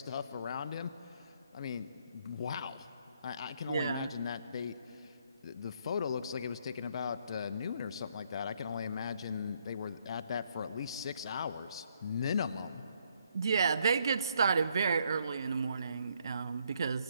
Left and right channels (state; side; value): inverted; both; correlation -0.71